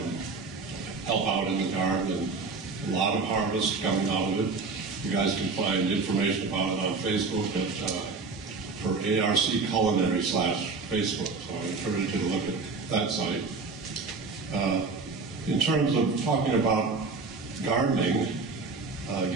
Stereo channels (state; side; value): quieter; left; 4.2 dB